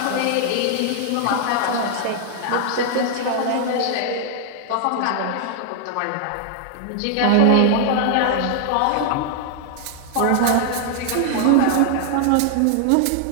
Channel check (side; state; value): both; different; correlation 0.00